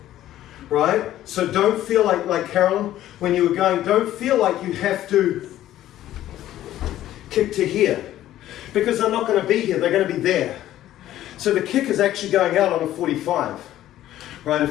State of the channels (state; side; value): quieter; right; 13.3 dB